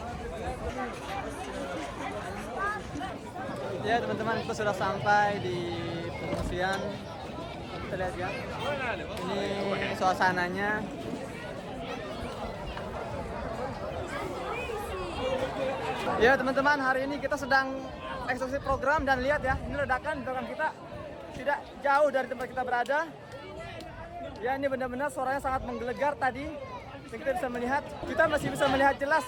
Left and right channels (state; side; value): identical; both; correlation 1.00